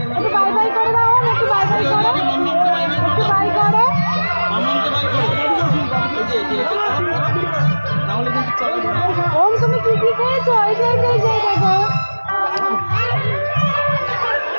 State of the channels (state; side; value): inverted; both; correlation -1.00